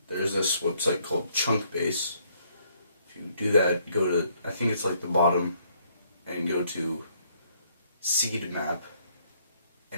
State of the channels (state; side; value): inverted; both; correlation -0.68